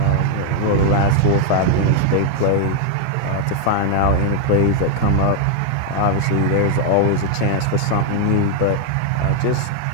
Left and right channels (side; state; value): both; different; correlation 0.00